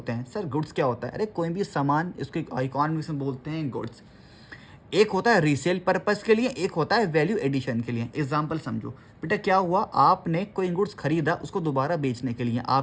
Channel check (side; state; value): both; identical; correlation 1.00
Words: हैं। सर गुड्स क्या होता है? अरे कोई भी सामान, इसको इकोनॉमिक्स में बोलते हैं गुड्स। एक होता है रीसेल पर्पस के लिए, एक होता है वैल्यू एडिशन के लिए। एग्जाम्पल समझो बेटा, क्या हुआ, आपने कोई गुड्स खरीदा उसको दोबारा बेचने के लिए।